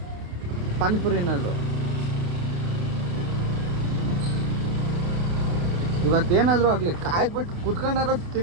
ಪಾನಿಪುರಿ ಏನಾದ್ರು. ಇವತ್ತೇನಾದ್ರು ಆಗಲಿ ಕಾಯ್ಬಿಟ್ಟು ಕುತ್ಕೊಂಡಾರ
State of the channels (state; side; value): late; left; 28 ms